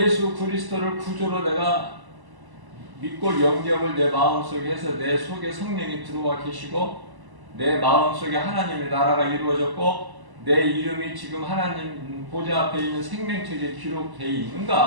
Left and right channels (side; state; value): left; late; 1.0 ms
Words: 그리스도를 구주로 내가 믿고 영접을 내 마음속에 해서 내 속에 성령이 들어와 계시고 내 마음속에 하나님의 나라가 이루어졌고 내 이름이 지금 하나님 보좌 앞에 있는 생명책에 기록되어